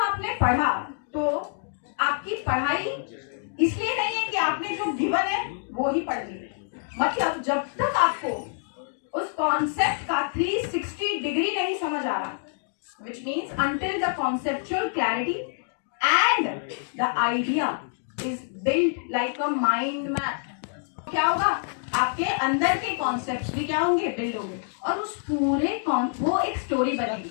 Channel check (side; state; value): right; silent; digital silence